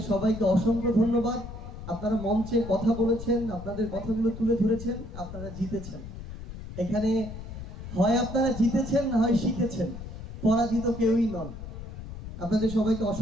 সবাইকে অসংখ্য ধন্যবাদ। আপনারা মঞ্চে কথা বলেছেন, আপনাদের কথাগুলো তুলে ধরেছেন, আপনারা জিতেছেন। এখানে হয় আপনারা জিতেছেন, না হয় শিখেছেন, পরাজিত কেউই নন। আপনাদের সবাইকে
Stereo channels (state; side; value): noise; left; rumble, 11 dB below the sound